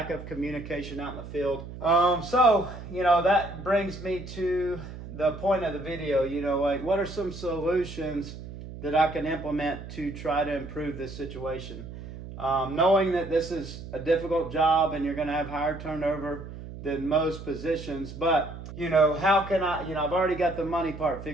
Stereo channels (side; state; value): right; noise; hum, 12 dB below the sound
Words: of communication out in the field. So, that brings me to the point of the video, like what are some solutions that I can implement to try to improve this situation? Knowing that this is a difficult job and you're going to have higher turnover than most positions, but how can I, I've already got the money part